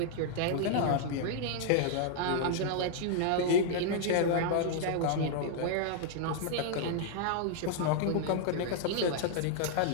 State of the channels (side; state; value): both; different; correlation -0.01